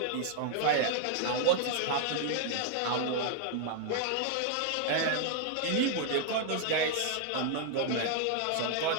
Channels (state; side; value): different; both; correlation -0.01